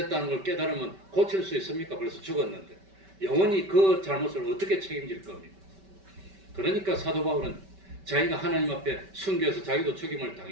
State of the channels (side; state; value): left; late; 5.2 ms